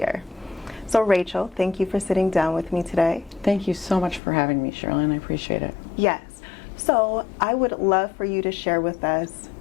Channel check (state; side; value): drops out; right; at 4.2 s